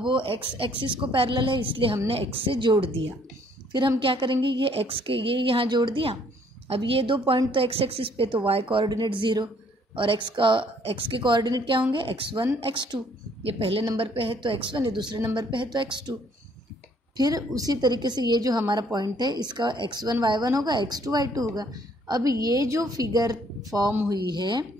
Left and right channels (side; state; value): both; normal; correlation 0.63